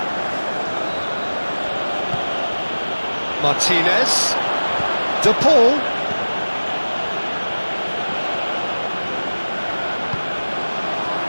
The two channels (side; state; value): both; inverted; correlation -1.00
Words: Martinez. De Paul.